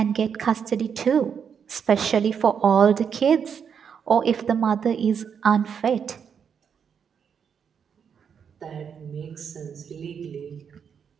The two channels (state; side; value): quieter; left; 7.2 dB